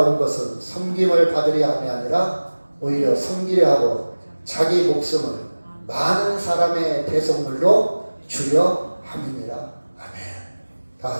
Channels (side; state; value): both; inverted; correlation -1.00